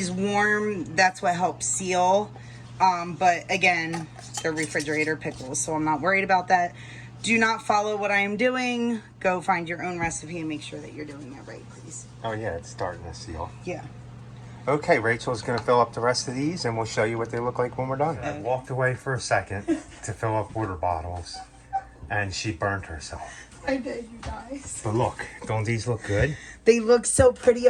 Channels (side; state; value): both; identical; correlation 1.00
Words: warm, that's what helps seal. But again, they're refrigerator pickles, so I'm not worried about that. Do not follow what I am doing. Go find your own recipe and make sure that you're doing it right, please. Oh yeah, it's starting to seal. Yeah. Okay, Rachel's going to fill up the rest of these and we'll show you what they look like when we're done. I walked away for a second to fill up water bottles and she burnt herself. I did, you guys. But look, don't these look good? They look so pretty